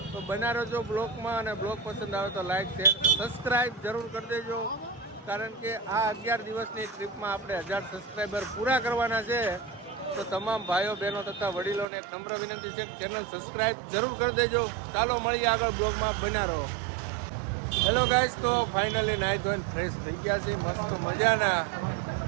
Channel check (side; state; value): left; drops out; at 11.9 s